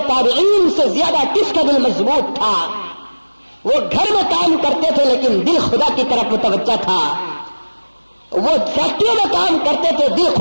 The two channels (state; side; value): inverted; both; correlation -1.00